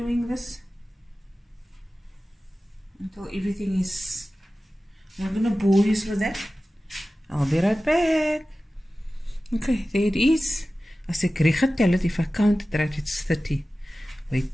this until everything is. I'm not going to bore you with that. I'll be right back. Okay, there it is. As ek reg getel het, if I count it right, it's 30.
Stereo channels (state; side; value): normal; both; correlation 0.96